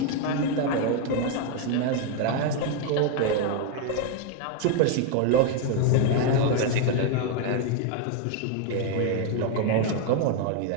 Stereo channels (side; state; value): both; different; correlation 0.01